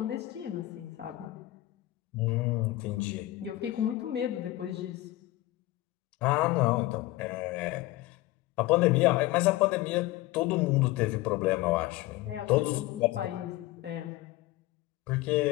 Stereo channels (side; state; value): right; quieter; 17.4 dB